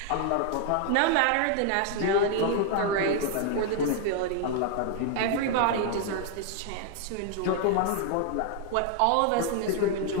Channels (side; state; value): both; different; correlation 0.00